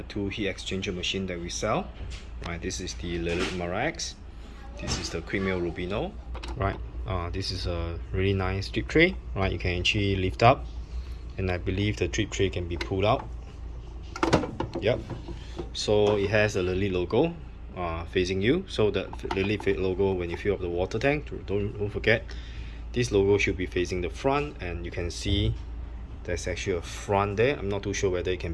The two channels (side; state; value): both; identical; correlation 1.00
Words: two heat exchanger machine that we sell. Right, this is the Lelit MaraX, This is the quick Mill Rubino, right? This is a really nice drip tray, right? You can actually lift up, and I believe the drip tray can be pulled out. Yep. So it has a Lelit logo facing you. So the Lelit logo, when you fill up the water tank, don't forget, this logo should be facing the front, and you can see there's actually a front there. I'm not too sure whether it can